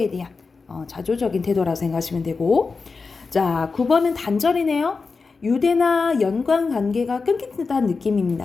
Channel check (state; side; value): quieter; right; 4.5 dB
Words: 대한 자조적인 태도라고 생각하시면 되고, 자 9번은 단절이네요. 유대나 연관 관계가 끊긴다는 느낌입니다.